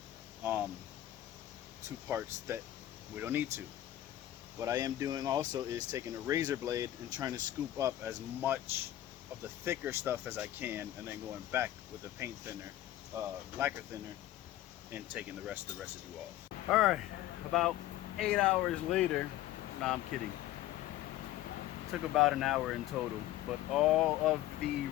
to parts that we don't need to. What I am doing also is taking a razor blade and trying to scoop up as much of the thicker stuff as I can, and then going back with the paint thinner, lacquer thinner, and taking the rest of the residue off. All right, about 8 hours later, nah, I'm kidding. Took about an hour in total, but all of the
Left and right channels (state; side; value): quieter; right; 13.9 dB